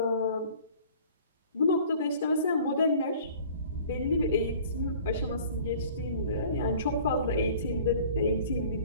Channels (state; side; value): inverted; both; correlation -0.48